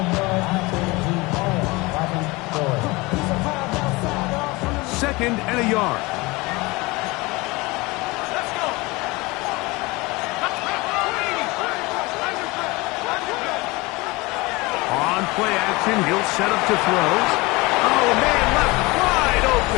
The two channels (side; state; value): right; quieter; 23.5 dB